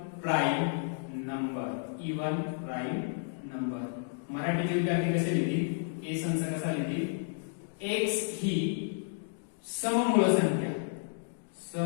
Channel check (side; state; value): right; silent; digital silence